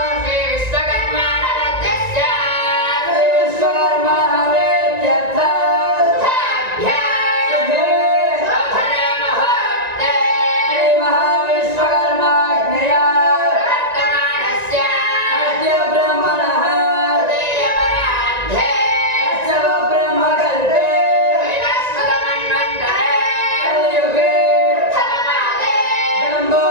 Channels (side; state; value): left; late; 1.9 ms